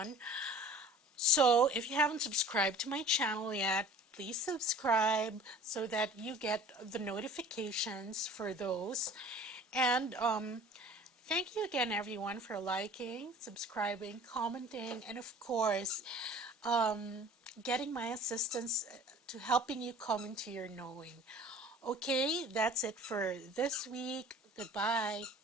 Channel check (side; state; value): both; normal; correlation 0.46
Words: So if you haven't subscribed to my channel yet, please subscribe so that you get the notifications for those. And thank you again, everyone, for liking, subscribing, commenting, and of course, getting my assistance to helping you come into your knowing. Okay, that's it for this week. Goodbye.